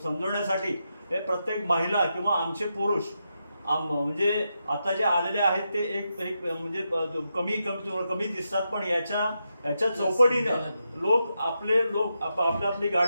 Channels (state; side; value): inverted; both; correlation -0.85